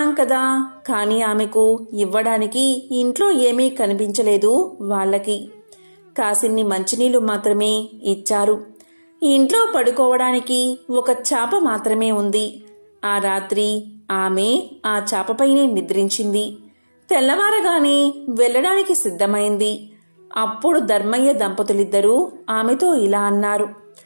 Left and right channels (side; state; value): both; inverted; correlation -1.00